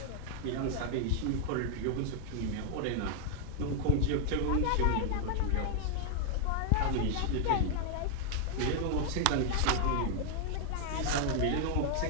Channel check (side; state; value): both; different; correlation 0.00